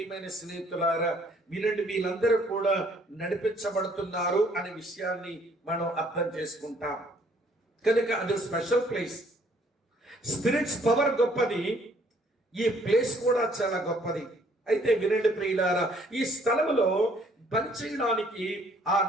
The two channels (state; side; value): normal; both; correlation 0.63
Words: స్నేహితులారా, వినండి వీళ్ళందరూ కూడా నడిపించబడుతున్నారు అనే విషయాన్ని మనం అర్థం చేసుకుంటాం. కనుక అది స్పెషల్ ప్లేస్. స్పిరిట్స్ పవర్ గొప్పది, ఈ ప్లేస్ కూడా చాలా గొప్పది. అయితే వినండి ప్రియులారా, ఈ స్థలంలో పనిచేయడానికి ఆ